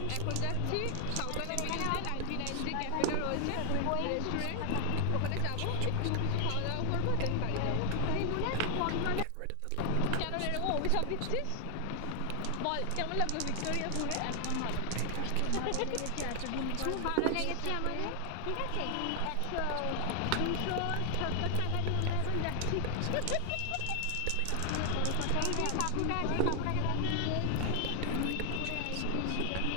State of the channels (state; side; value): different; both; correlation 0.00